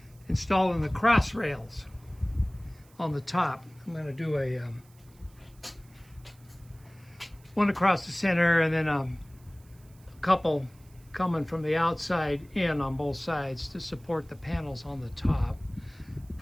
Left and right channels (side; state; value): right; noise; hiss, 29 dB below the sound